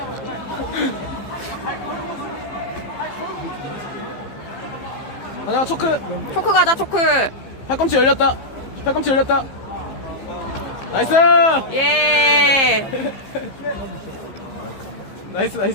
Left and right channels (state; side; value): late; right; 15 ms